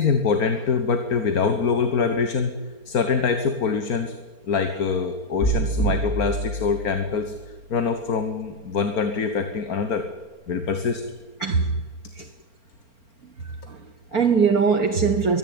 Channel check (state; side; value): late; right; 4.4 ms